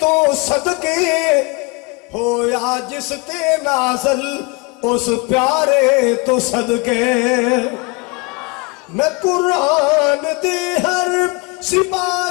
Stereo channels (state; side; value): quieter; right; 27.4 dB